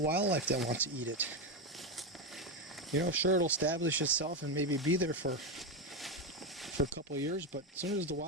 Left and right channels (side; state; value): both; normal; correlation 0.11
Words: wildlife that wants to eat it. You know, sure, it'll establish itself and maybe be there for a couple of years, but as soon as the